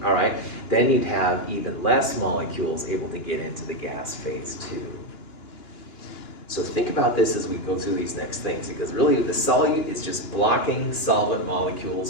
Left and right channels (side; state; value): right; late; 2.9 ms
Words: all right, then you'd have even less molecules able to get into the gas phase too. So think about this as we go through these next things, because really the solute is just blocking solvent